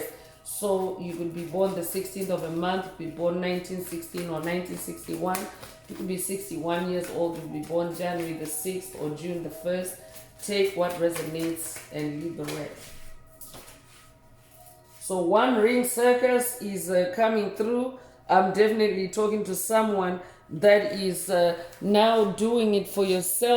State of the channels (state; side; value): identical; both; correlation 1.00